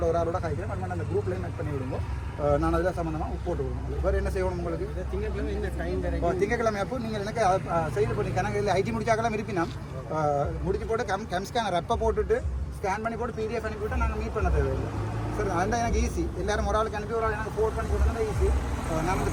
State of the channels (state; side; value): identical; both; correlation 1.00